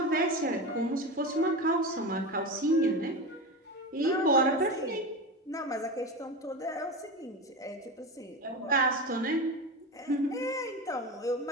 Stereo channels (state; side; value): normal; both; correlation 0.23